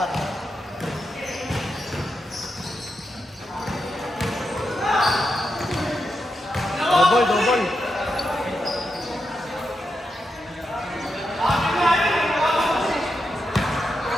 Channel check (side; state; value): both; normal; correlation 0.86